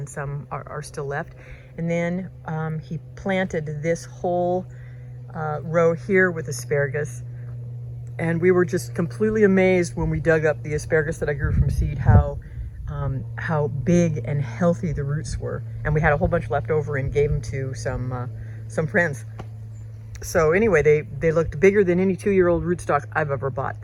some are still left. And then he planted this whole row here with asparagus. And we were just completely amazed when we dug up the asparagus that I grew from seed, how big and healthy the roots were. And we had a whole bunch left over and gave them to some friends. So anyway, they looked bigger than any 2-year-old rootstock I've ever bought.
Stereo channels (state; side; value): identical; both; correlation 1.00